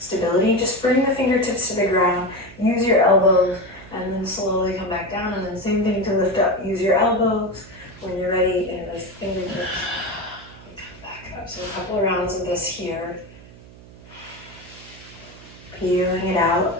just bring the fingertips to the ground, use your elbows, and then slowly come back down, and then same thing to lift up. Use your elbows when you're ready, and those fingertips, and come back up. So a couple of rounds of this here. Feeling it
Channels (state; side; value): noise; right; hum, 20 dB below the sound